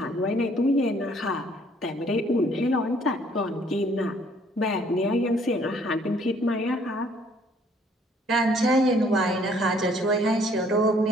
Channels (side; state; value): both; normal; correlation 0.61